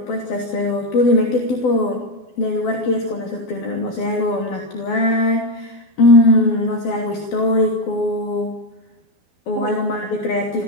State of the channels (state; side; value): late; right; 12 ms